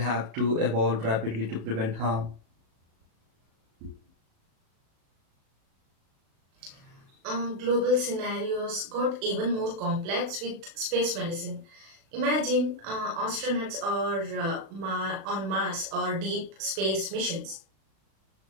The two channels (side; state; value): left; late; 36 ms